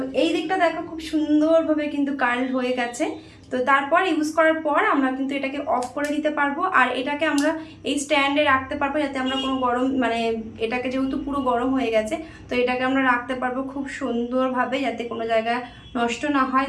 এই দিকটা দেখো খুব সুন্দরভাবে কিন্তু কার্ল হয়ে গেছে। তো তারপর ইউজ করার পর আমরা কিন্তু এটাকে অফ করে দিতে পারবো, আর এটাকে আমরা এই স্ট্যান্ডে রাখতে পারবো, যাতে আমরা কোনো গরম মানে এটাকে যেহেতু পুরো গরম হয়ে গেছে, তো এটাকে আমরা রাখতে পারবো খুব সুন্দরভাবে, যাতে কোনো জায়গায় নষ্ট না হয়,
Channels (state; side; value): identical; both; correlation 1.00